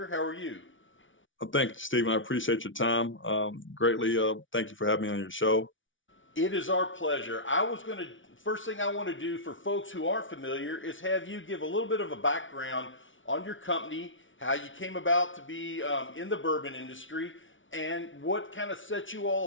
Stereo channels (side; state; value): right; late; 0.56 ms